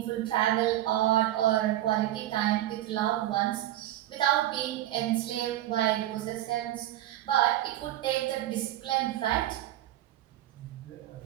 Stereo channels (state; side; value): quieter; left; 14.0 dB